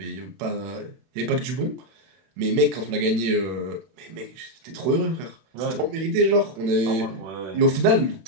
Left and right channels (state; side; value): late; left; 31 ms